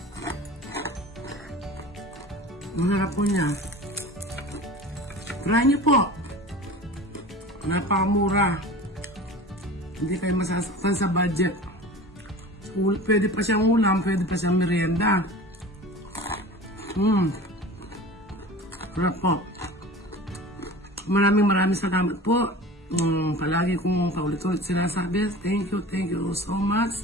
Ang harap po niya. Try niyo po. Napakamura. Hindi kayo masasaktan sa budget. Pwede pa siyang ulam, pwede pa siyang merienda. Harap po. Maraming salamat po. Palagi kong paulit-ulit sinasabi. Thank you so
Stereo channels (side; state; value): both; normal; correlation 0.37